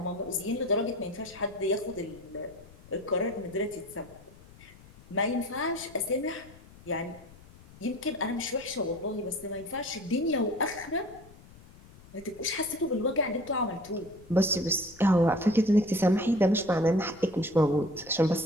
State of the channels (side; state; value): left; noise; rumble, 22 dB below the sound